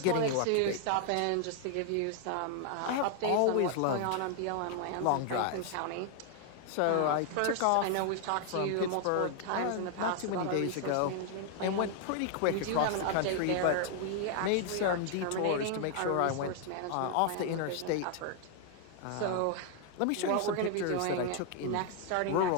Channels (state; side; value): different; both; correlation 0.00